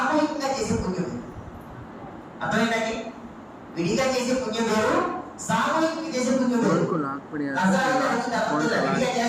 చేసే పుణ్యం వేరు. అర్థమైందండి? విడిగా చేసే పుణ్యం వేరు, సామూహికంగా చేసే పుణ్యం వేరు. విడిగా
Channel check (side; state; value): both; identical; correlation 1.00